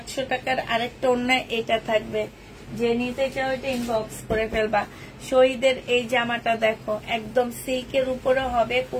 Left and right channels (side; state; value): both; identical; correlation 1.00